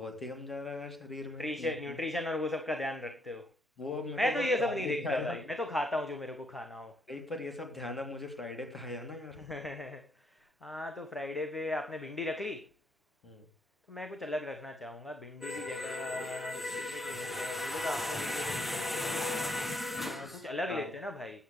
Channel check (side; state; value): both; normal; correlation 0.72